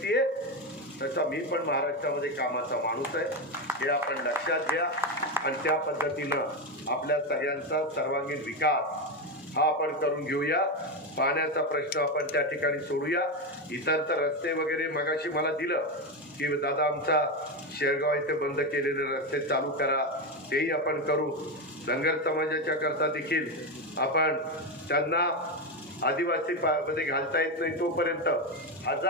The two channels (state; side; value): normal; both; correlation 0.12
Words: आहे, तसा मी पण महाराष्ट्रामध्ये कामाचा माणूस आहे. हे आपण लक्षात घ्या आणि त्या पद्धतीनं आपल्या सगळ्यांचा सर्वांगीण विकास हा आपण करून घेऊया. पाण्याचा प्रश्न आपण त्या ठिकाणी सोडूया. इतर तर रस्ते वगैरे मगाशी मला दिलं की दादा आमचा शेरगाव इथे बंद केलेले रस्ते चालू करा, तेही आपण करू. धनगर समाजाच्या करता देखील आपण त्यांना आदिवासी मध्ये घालता येत नाही तोपर्यंत